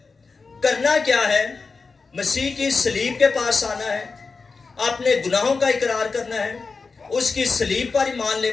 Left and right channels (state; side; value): quieter; right; 4.5 dB